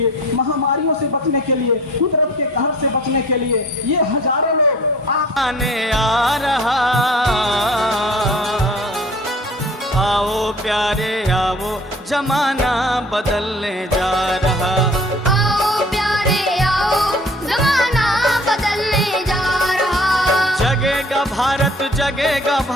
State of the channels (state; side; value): normal; both; correlation 0.49